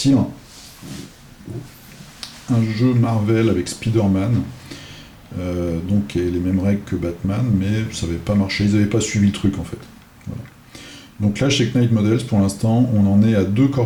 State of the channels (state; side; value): identical; both; correlation 1.00